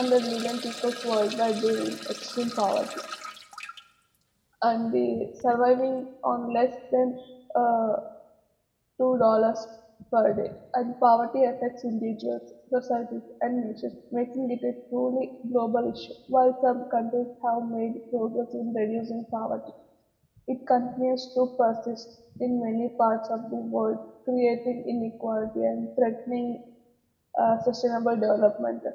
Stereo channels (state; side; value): identical; both; correlation 1.00